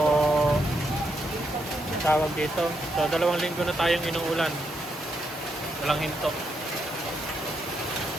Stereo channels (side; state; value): both; normal; correlation 0.80